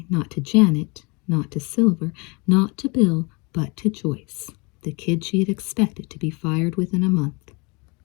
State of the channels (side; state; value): right; quieter; 28.9 dB